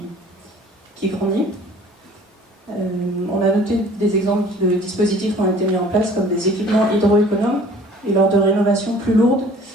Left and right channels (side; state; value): both; normal; correlation 0.50